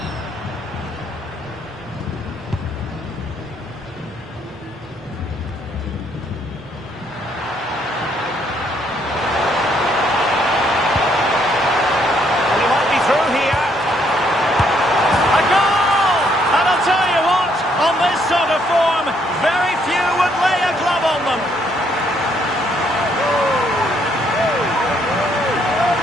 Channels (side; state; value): both; normal; correlation 0.70